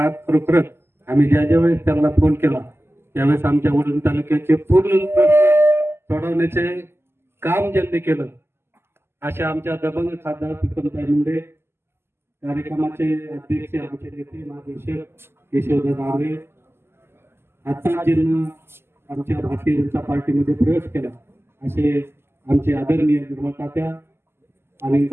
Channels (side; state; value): left; late; 0.12 ms